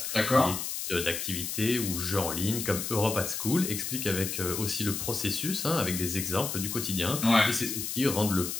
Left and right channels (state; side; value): noise; left; hiss, 4 dB below the sound